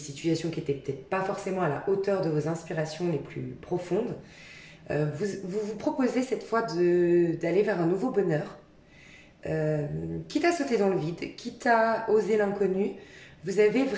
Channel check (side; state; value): both; identical; correlation 1.00